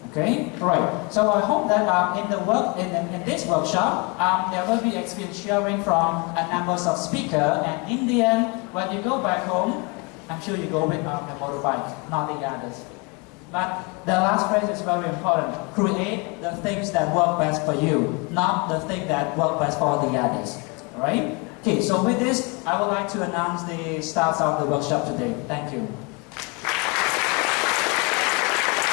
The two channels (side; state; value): right; quieter; 30.4 dB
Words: Okay, right. So I hope that in this workshop, there will be experience sharing from a number of speakers, and in the end, when you go back home, I'm sure you go with the motorbike, not the others. But the last phrase is very important. Create the things that work best for you, not the thing that work best for the others. Alright? Okay, so with this, I would like to announce the start of the workshop today. Thank you.